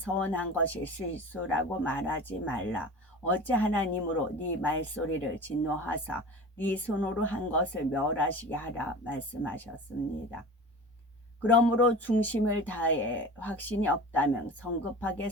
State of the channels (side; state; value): both; normal; correlation 0.35